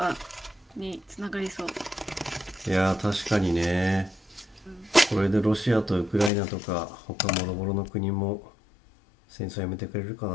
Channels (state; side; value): drops out; right; at 6.3 s